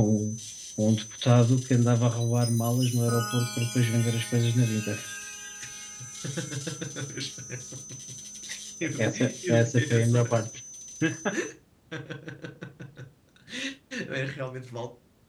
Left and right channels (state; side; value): identical; both; correlation 1.00